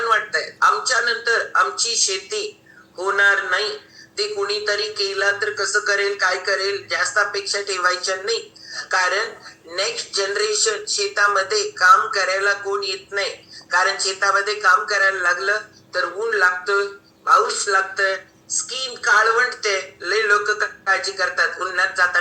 वाटतंय आमच्या नंतर आमची शेती होणार नाही. ते कुणीतरी केला तर कसं करेल, काय करेल, जास्त अपेक्षा ठेवायच्या नाही. कारण नेक्स्ट जनरेशन शेतामध्ये काम करायला कोण येत नाही. कारण शेतामध्ये काम करायला लागलं तर ऊन लागतं, पाऊस लागतं, स्किन काळवंटते, लय लोक काळजी करतात, उन्हात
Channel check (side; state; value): both; identical; correlation 1.00